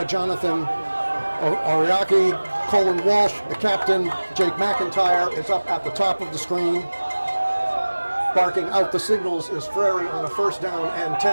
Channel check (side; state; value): both; inverted; correlation -1.00